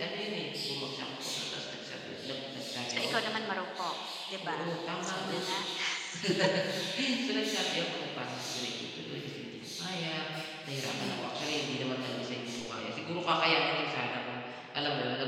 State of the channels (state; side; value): identical; both; correlation 1.00